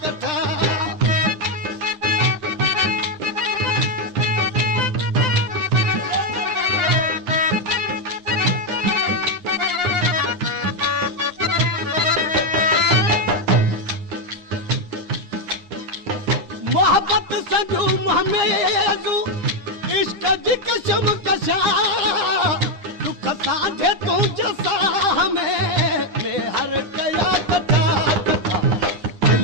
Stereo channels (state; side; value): late; left; 9.8 ms